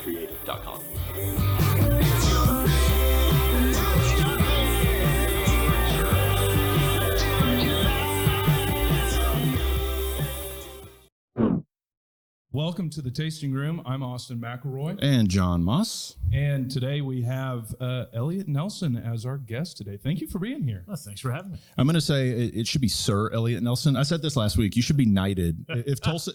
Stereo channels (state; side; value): identical; both; correlation 1.00